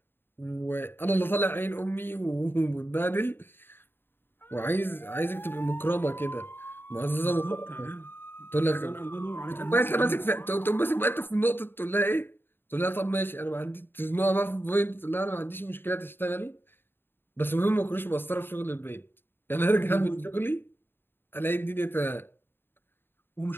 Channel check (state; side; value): late; right; 0.10 ms